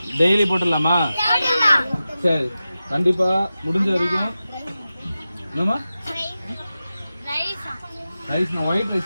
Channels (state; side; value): inverted; both; correlation -0.93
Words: டெய்லி போட்டுடலாமா? சரி, கண்டிப்பா முடிஞ்ச வரைக்கும். என்னமா ரைஸ்? ஒயிட்